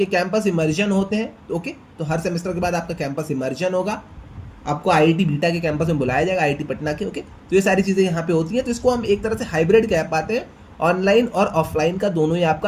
कैंपस इमर्जन होते हैं। ओके, तो हर सेमेस्टर के बाद आपका कैंपस इमर्जन होगा, आपको IIT बीटा के कैंपस में बुलाया जाएगा, IIT पटना के। ओके, तो ये सारी चीज़ें यहाँ पे होती हैं। तो इसको हम एक तरह से हाइब्रिड कह पाते हैं। ऑनलाइन और ऑफलाइन का दोनों ही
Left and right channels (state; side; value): identical; both; correlation 1.00